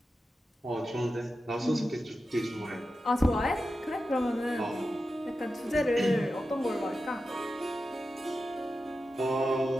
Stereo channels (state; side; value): normal; both; correlation 0.91